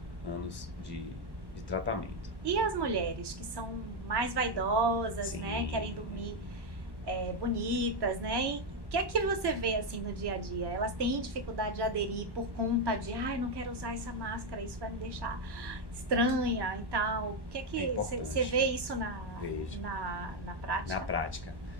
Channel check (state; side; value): late; left; 1.1 ms